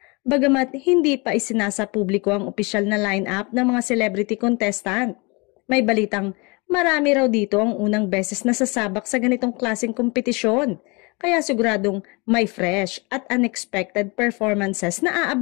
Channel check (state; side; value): quieter; right; 28.3 dB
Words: Bagamat hindi pa isinasa publiko ang opisyal na line-up ng mga celebrity contestant, may balitang marami raw dito ang unang beses na sasabak sa ganitong klaseng kompetisyon, kaya siguradong may fresh at unexpected performances na